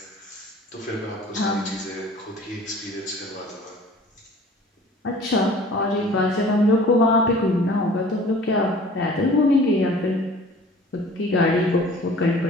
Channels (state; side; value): normal; both; correlation 0.47